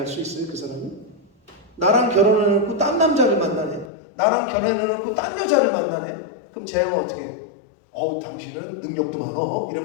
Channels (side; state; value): right; drops out; at 3.9 s